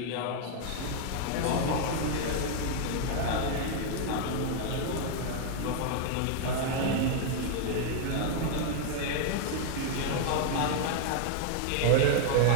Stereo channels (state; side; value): different; both; correlation 0.00